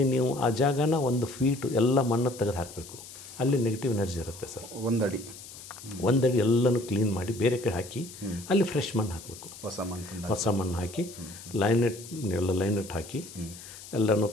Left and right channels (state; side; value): noise; left; hiss, 15 dB below the sound